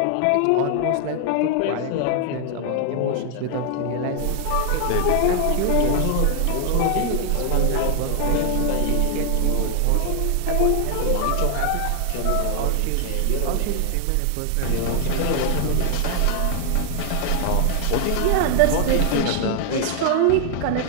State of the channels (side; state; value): both; different; correlation 0.00